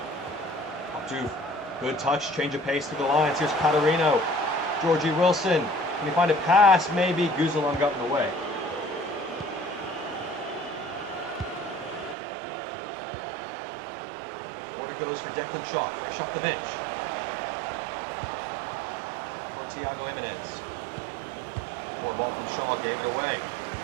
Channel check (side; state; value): left; drops out; at 12.2 s